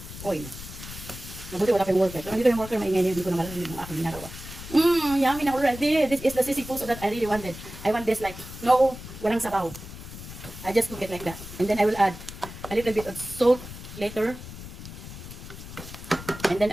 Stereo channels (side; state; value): left; noise; rumble, 12 dB below the sound